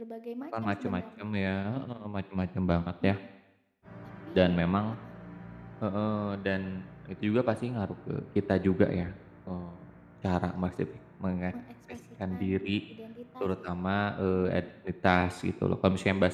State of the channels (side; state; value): both; identical; correlation 1.00